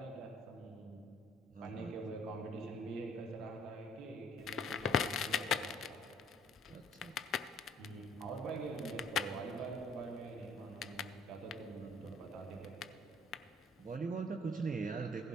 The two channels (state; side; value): normal; both; correlation 0.59